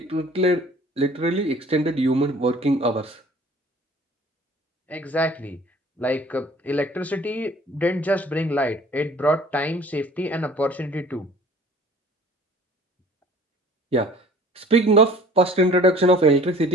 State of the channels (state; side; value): normal; both; correlation 0.49